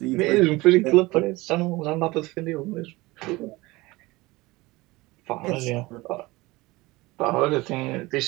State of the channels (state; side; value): quieter; left; 21.2 dB